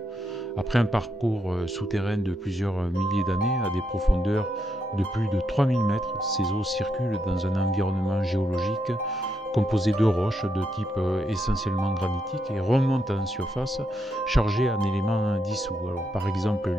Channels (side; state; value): both; normal; correlation 0.80